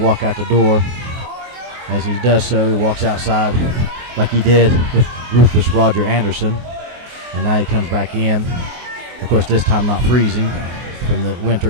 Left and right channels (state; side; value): late; left; 24 ms